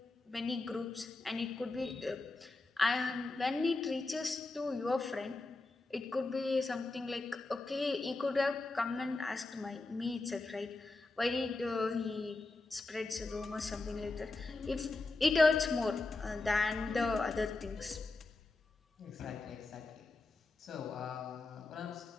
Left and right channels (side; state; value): right; quieter; 3.3 dB